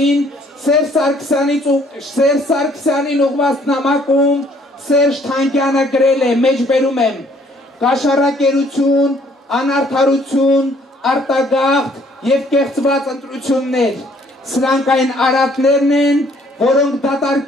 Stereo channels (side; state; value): both; normal; correlation 0.62